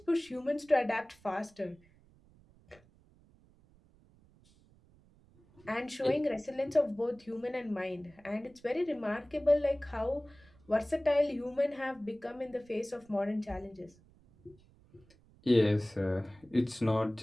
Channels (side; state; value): right; noise; rumble, 28 dB below the sound